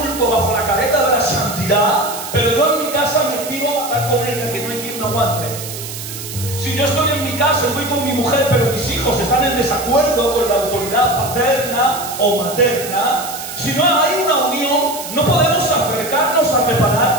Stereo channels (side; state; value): right; noise; hiss, 9 dB below the sound